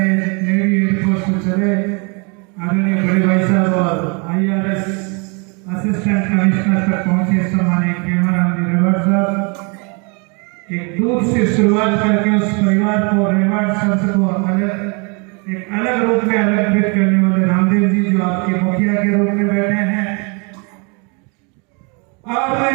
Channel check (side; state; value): left; quieter; 33.2 dB